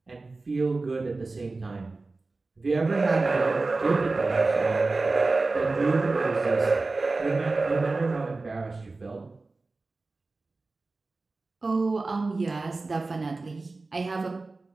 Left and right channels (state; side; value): quieter; left; 3.5 dB